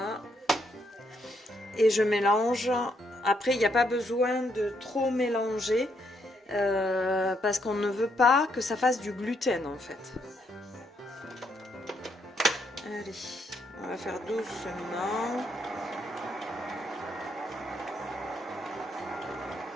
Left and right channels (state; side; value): normal; both; correlation 0.75